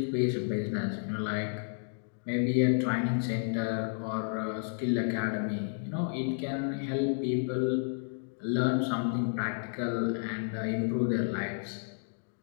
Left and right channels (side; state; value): right; silent; digital silence